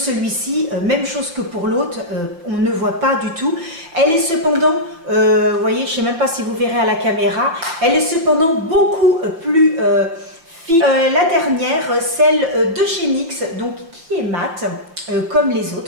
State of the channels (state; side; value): late; left; 5.9 ms